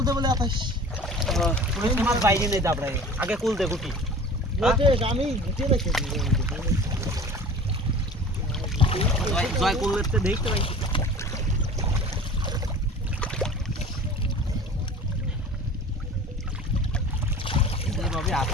দে বলে আতাস ওই মাছ বাইরে নেই দাবড়াই আগে কোল দে গুটি আমি গুটি রেখেছি জয় করতে দেখতে ভাই এইভাবে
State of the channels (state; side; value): normal; both; correlation 0.41